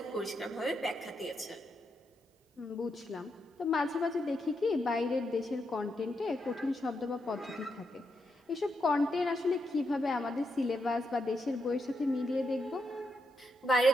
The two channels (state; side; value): normal; both; correlation 0.82